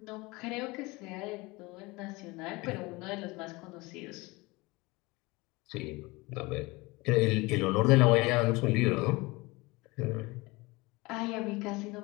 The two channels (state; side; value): quieter; right; 23.5 dB